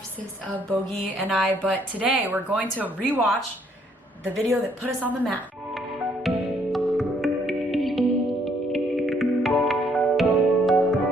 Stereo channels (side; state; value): both; normal; correlation 0.67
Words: of Bogie and I, but today we're going to rewatch the video that put us on the map.